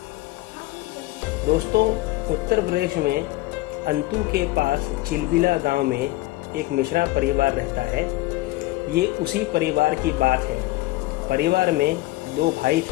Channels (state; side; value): quieter; right; 18.8 dB